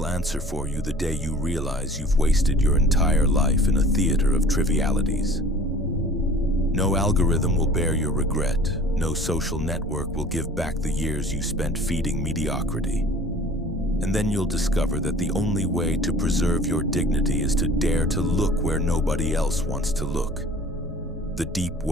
answer for you the day you realize you've wasted your entire life in a theater of trivialities. No algorithm will bear your regret. No social network will give back the years you spent feeding mediocrity. And then you'll discover that the only way to preserve your dignity is to dare to look where nobody else wants to look. The deep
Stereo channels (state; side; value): normal; both; correlation 0.47